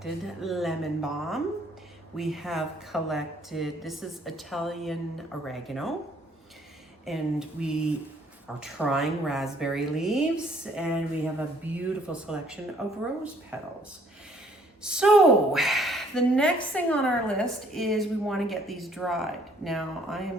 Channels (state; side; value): normal; both; correlation 0.62